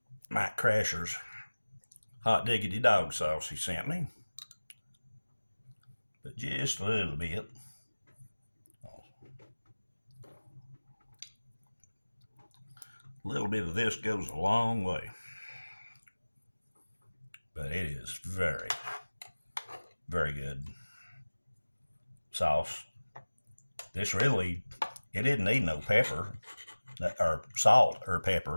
Mike Crasher's hot diggity dog sauce he sent me, but just a little bit. A little bit of this goes a long way, but it is very, very good sauce. This really, it didn't need no pepper or salt or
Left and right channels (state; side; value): inverted; both; correlation -1.00